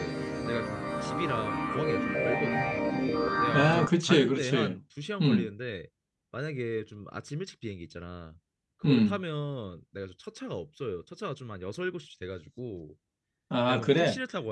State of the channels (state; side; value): identical; both; correlation 1.00